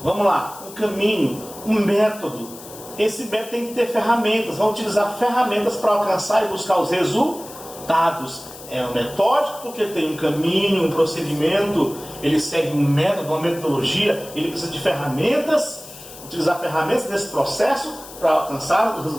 Vamos lá, um caminho, um método. Esse método tem que ter ferramentas, vão utilizar ferramentas para alcançar e buscar os resultados. É um metódico porque tem um caminho, um procedimento, ele segue um método, uma metodologia, ele precisa de ferramentas, utilizar ferramentas nesse processo para alcançar os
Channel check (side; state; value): left; noise; hiss, 16 dB below the sound